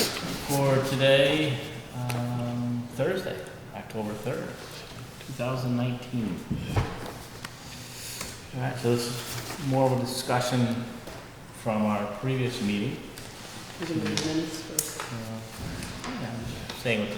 for today, Thursday, October 3rd, 2019. All right, so this is more of a discussion from our previous meeting. We're gonna do minutes first. Yeah, I'm just saying what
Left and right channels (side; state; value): both; identical; correlation 1.00